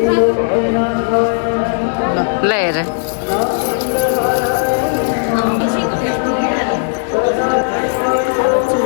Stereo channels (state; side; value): silent; right; digital silence